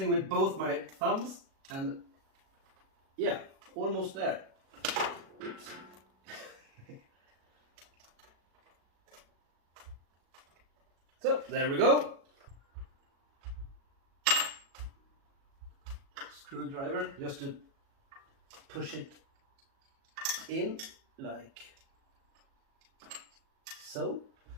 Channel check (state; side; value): late; left; 37 ms